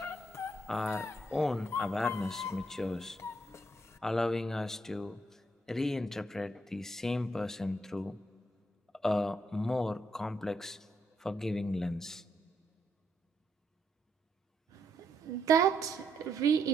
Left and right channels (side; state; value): both; normal; correlation 0.76